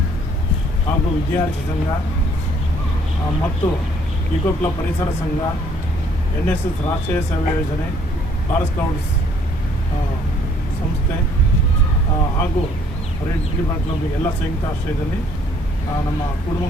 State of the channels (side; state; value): both; normal; correlation 0.62